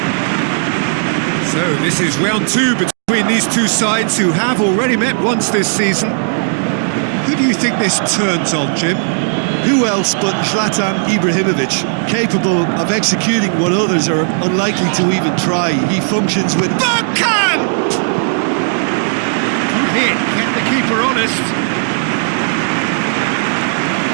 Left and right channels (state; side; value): silent; left; digital silence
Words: So this is round two between these two sides who have already met once this season. Who do you think this turns on, Jim? Who else but Zlatan Ibrahimovic, capable of executing what others are unlikely to even try. He functions with... Bergkamp! Good hit, kept the keeper honest.